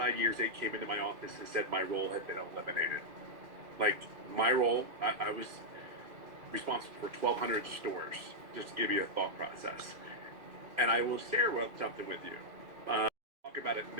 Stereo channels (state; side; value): late; left; 2.3 ms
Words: years, they came into my office and said my role had been eliminated. Like, my role, I was responsible for 1,200 stores, just to give you a thought process. And I will share something with you. Talk about it